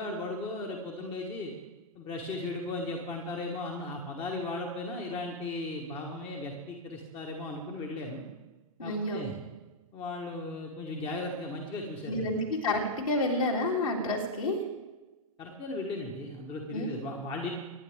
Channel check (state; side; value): normal; both; correlation -0.02